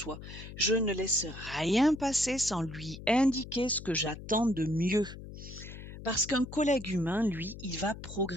Je ne laisse rien passer sans lui indiquer ce que j'attends de mieux. Parce qu'un collègue humain, lui, il va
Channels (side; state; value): left; noise; hum, 13 dB below the sound